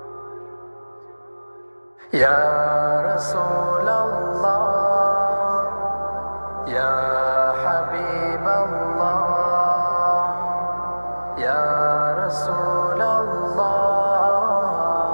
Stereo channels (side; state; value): both; inverted; correlation -1.00